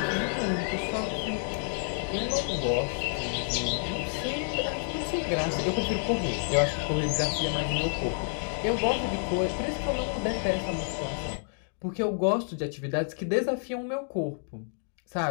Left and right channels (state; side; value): silent; right; 58 dB below the other